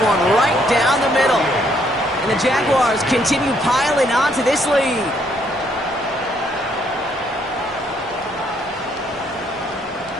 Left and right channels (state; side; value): normal; both; correlation 0.70